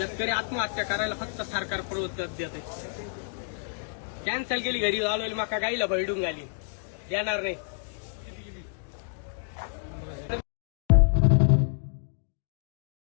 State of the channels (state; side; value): silent; right; digital silence